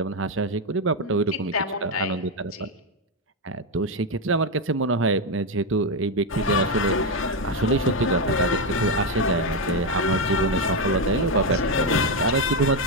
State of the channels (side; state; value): both; normal; correlation 0.06